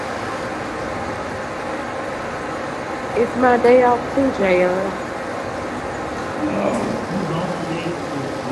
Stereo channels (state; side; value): identical; both; correlation 1.00